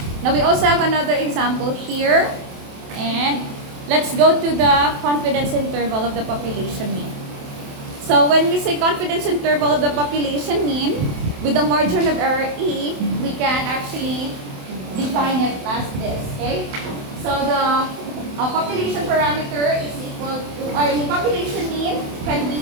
Now we also have another example here. And let's go to the confidence interval of the population mean. So when we say confidence interval of the population mean, with the margin of error E, we can actually define it as this, okay? So the population parameter is equal to, or the population mean can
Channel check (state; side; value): late; left; 27 ms